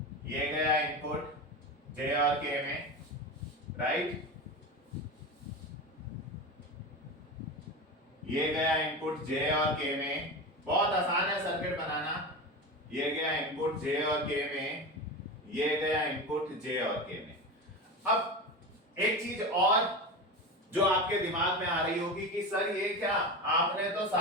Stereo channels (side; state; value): both; normal; correlation 0.24